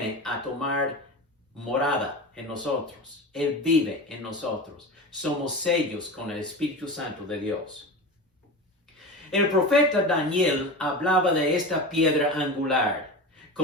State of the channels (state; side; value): normal; both; correlation 0.28